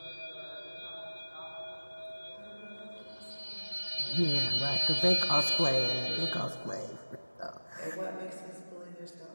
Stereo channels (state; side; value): inverted; both; correlation -1.00